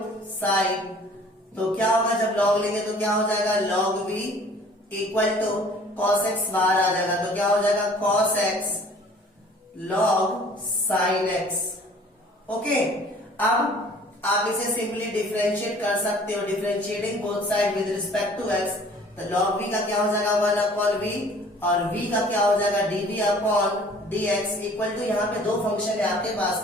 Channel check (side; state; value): both; normal; correlation 0.51